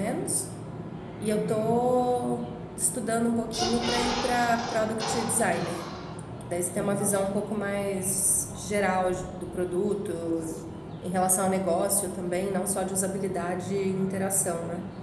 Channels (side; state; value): both; identical; correlation 1.00